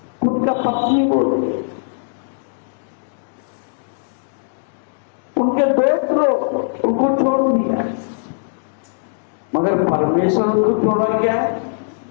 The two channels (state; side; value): silent; right; digital silence